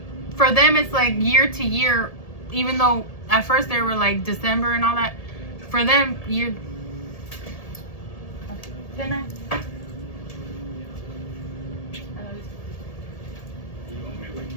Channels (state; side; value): late; right; 1.8 ms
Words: for them it's like year to year, even though at first they were like December and all that. For them, you can I?